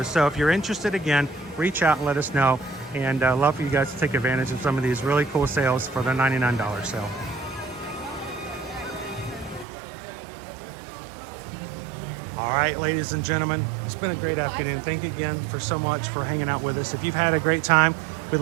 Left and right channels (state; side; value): drops out; left; at 9.7 s